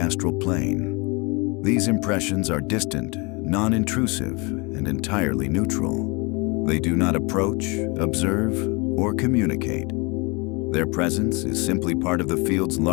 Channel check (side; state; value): right; quieter; 28.8 dB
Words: plane. These impressions are distant, non-intrusive, and entirely neutral. They do not approach, observe, or communicate. Their presence is simply part of the field's